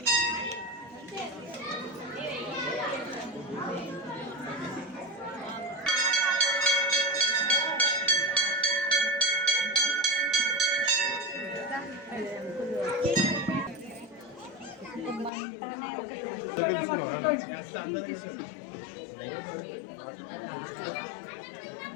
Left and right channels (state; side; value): drops out; right; at 15.3 s